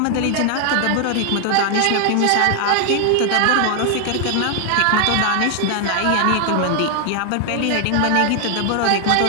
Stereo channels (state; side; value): different; both; correlation 0.00